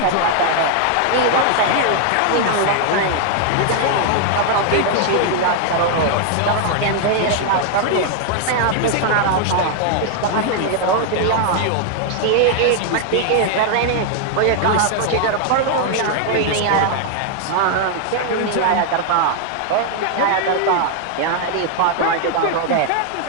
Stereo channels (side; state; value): both; different; correlation 0.00